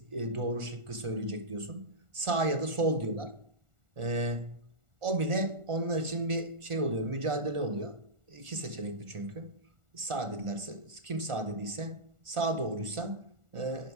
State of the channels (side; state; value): left; late; 1.4 ms